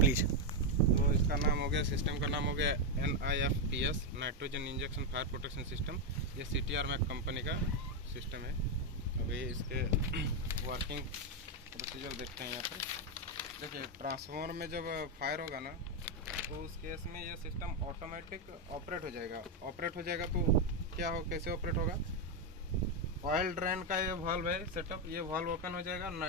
तो इसका नाम हो गया, सिस्टम का नाम हो गया NIFPS, nitrogen injection fire protection system. ये CTR मैक कंपनी का सिस्टम है। अभी इसके वर्किंग प्रोसीजर देखते हैं। यहाँ पर देखिए, ट्रांसफार्मर में जब फायर होगा ना, तो उस केस में ये सिस्टम ऑटोमेटिक ऑपरेट हो जाएगा। तो क्या हो, कैसे ऑपरेट होगा? ऑयल ड्रेन का ये वाल्व है सेटअप, ये वाल्व ओपन हो जाएगा।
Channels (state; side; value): normal; both; correlation 0.04